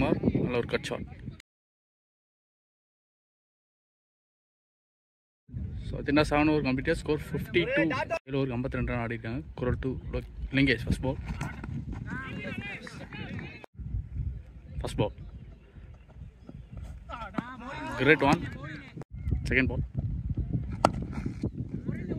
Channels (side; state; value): both; identical; correlation 1.00